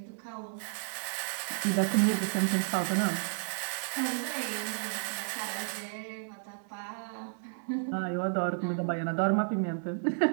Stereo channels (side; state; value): left; silent; digital silence